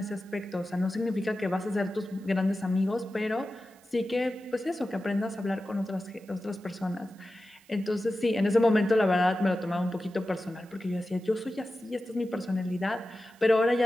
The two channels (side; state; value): right; noise; hiss, 29 dB below the sound